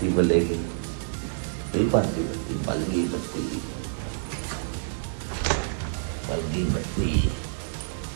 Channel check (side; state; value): left; silent; 58 dB below the other